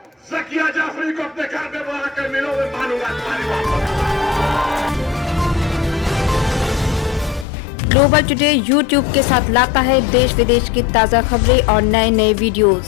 ज़किया जाफरी को अपने घर में बुलाकर मिलो, मैं मानूंगा तुम्हारी मोहब्बत। ग्लोबल टुडे यूट्यूब के साथ लाता है देश विदेश की ताज़ा खबरें और नए नए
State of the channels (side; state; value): right; drops out; at 7.5 s